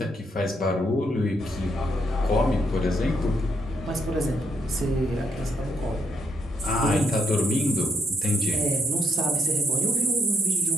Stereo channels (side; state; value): both; normal; correlation 0.75